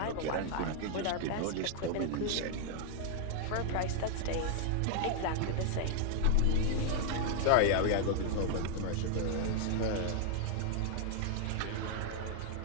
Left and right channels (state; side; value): different; both; correlation 0.00